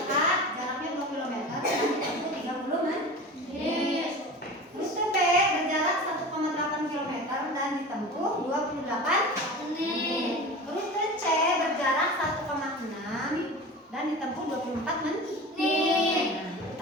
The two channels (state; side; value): normal; both; correlation 0.33